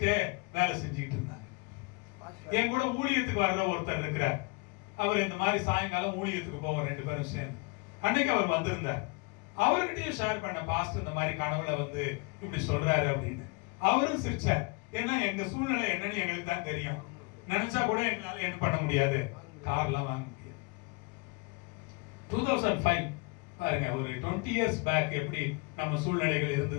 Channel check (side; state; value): right; quieter; 28.6 dB